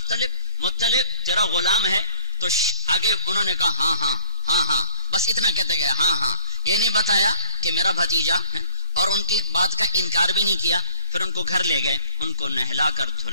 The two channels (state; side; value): inverted; both; correlation -0.52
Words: مطلب تیرا غلام ہے. تو آگے انہوں نے کہا ہاں ہاں ہاں ہاں، بس اتنا کہتے گئے ہاں ہاں. یہ نہیں بتایا کہ میرا بھتیجا ہے اور ان کی بات کا انکار بھی نہیں کیا. پھر ان کو گھر لے گئے، ان کو نہلا کر